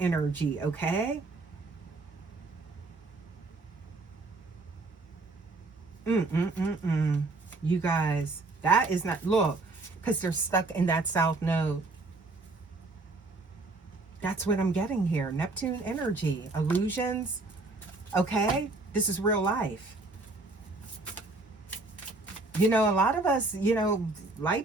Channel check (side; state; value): left; quieter; 3.3 dB